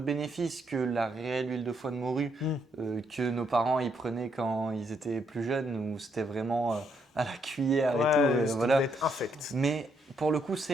que la réelle huile de foie de morue que nos parents y prenaient quand ils étaient plus jeunes, où c'était vraiment à la cuillère et tout. Ça Voilà. doit être infect. Mais pour le coup,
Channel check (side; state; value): both; normal; correlation 0.75